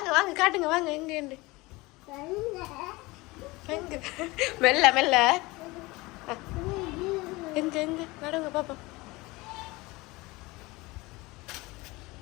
வாங்க காட்டுங்க வாங்க எங்க எங்க மெல்ல மெல்ல எங்க எங்க நடுங்க பாப்பா.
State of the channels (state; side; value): quieter; right; 22.3 dB